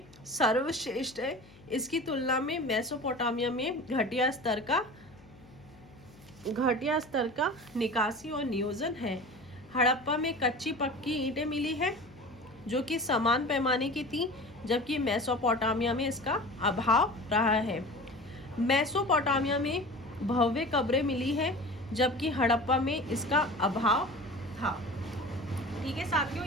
सर्वश्रेष्ठ है। इसकी तुलना में मेसोपोटामिया में घटिया स्तर का निकासी और नियोजन है। हड़प्पा में कच्ची पक्की ईंटें मिली है जो कि समान पैमाने की थी, जबकि मेसोपोटामिया में इसका अभाव रहा है। मेसोपोटामिया में भव्य कब्रें मिली है, जबकि हड़प्पा में इसका अभाव था। ठीक है साथियों,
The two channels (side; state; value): left; noise; hum, 24 dB below the sound